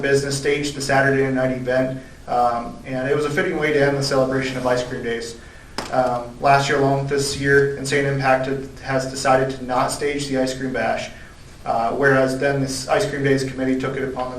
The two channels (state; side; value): identical; both; correlation 1.00